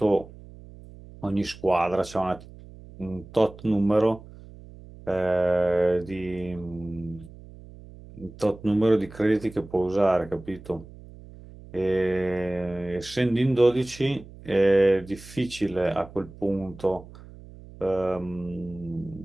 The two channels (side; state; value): right; noise; hum, 18 dB below the sound